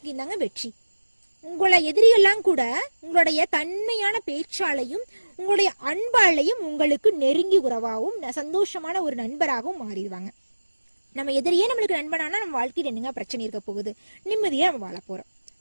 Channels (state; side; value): inverted; both; correlation -1.00